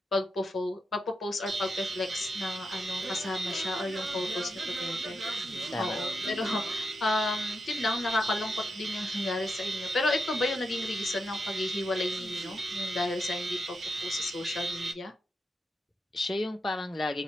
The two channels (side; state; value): both; normal; correlation 0.86